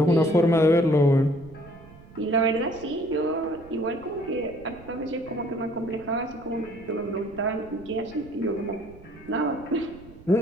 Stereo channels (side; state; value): right; noise; rumble, 21 dB below the sound